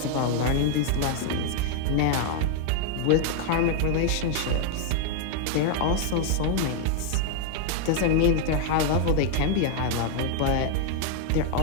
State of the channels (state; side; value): different; both; correlation 0.00